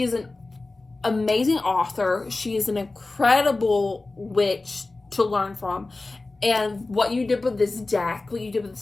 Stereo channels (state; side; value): quieter; right; 3.3 dB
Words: is an amazing author. She is an incredible witch to learn from. And what you did with this deck, what you did with